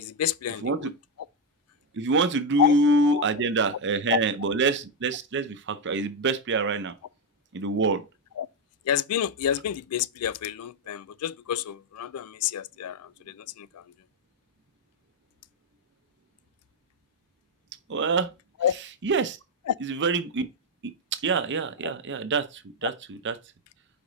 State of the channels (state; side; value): normal; both; correlation 0.03